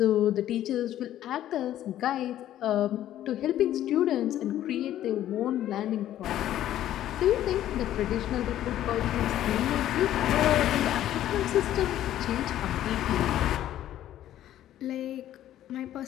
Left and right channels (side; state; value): right; quieter; 12.4 dB